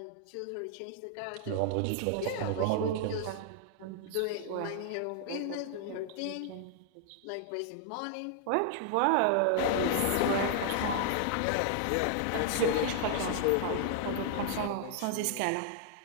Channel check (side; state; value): both; different; correlation 0.00